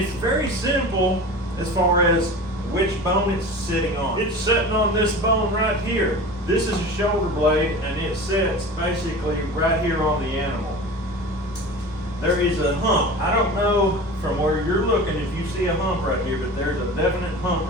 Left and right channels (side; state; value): both; normal; correlation 0.35